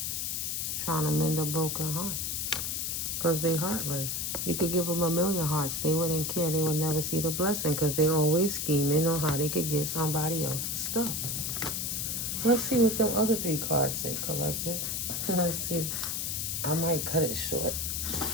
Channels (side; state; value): left; noise; hiss, 1 dB below the sound